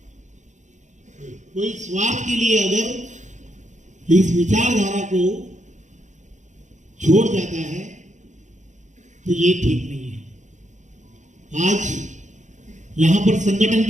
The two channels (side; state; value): left; late; 0.35 ms